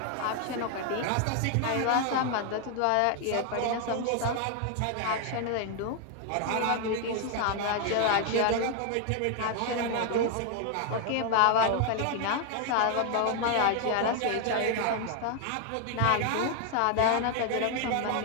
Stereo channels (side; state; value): both; different; correlation 0.00